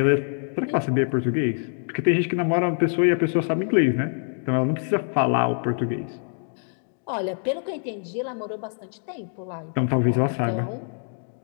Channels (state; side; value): silent; right; digital silence